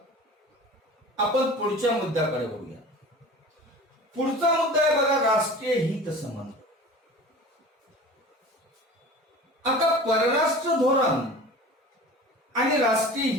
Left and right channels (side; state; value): both; normal; correlation 0.39